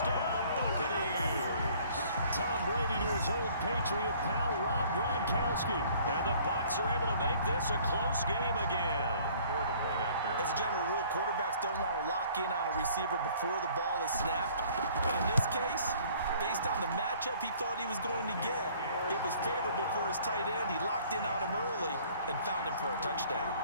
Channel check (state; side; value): inverted; both; correlation -0.55